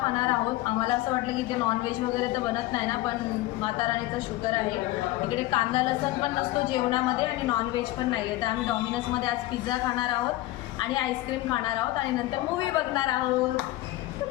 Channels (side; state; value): right; quieter; 17.2 dB